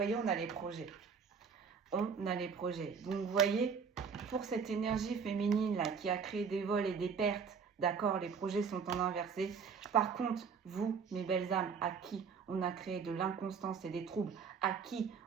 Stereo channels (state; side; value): quieter; left; 6.1 dB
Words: on a les projets. On a les projets. Donc, vous voyez, pour cette énergie féminine, là, qui a créé des vols et des pertes, d'accord, les projets sont en inversé. Par contre, vous, mes belles âmes, à qui on a créé de l'inconstance et des troubles, à qui